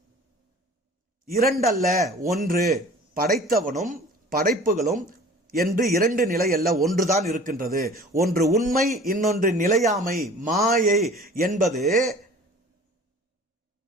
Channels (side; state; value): both; normal; correlation 0.45